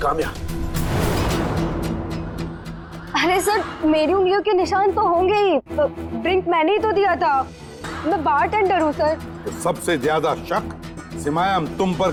अरे सर, मेरी उंगलियों के निशान तो होंगे ही। ड्रिंक मैंने ही तो दिया था। मैं बारटेंडर हूँ सर। तो सबसे ज्यादा शक सिमाया हम तुम पर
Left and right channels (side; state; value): both; identical; correlation 1.00